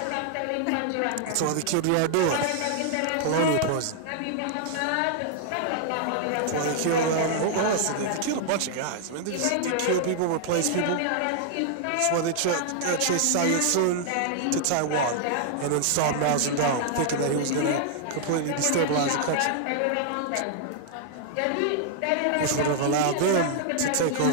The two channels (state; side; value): different; both; correlation 0.00